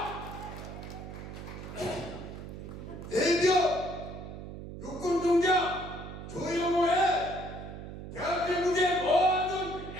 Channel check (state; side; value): noise; right; hum, 10 dB below the sound